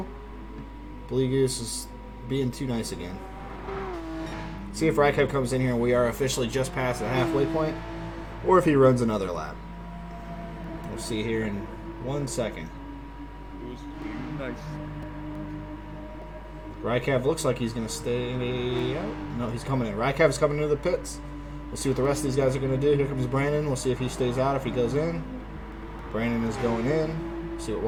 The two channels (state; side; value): identical; both; correlation 1.00